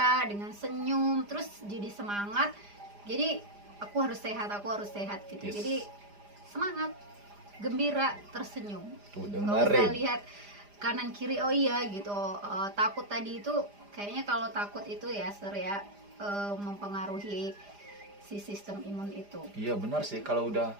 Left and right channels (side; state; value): left; late; 4.9 ms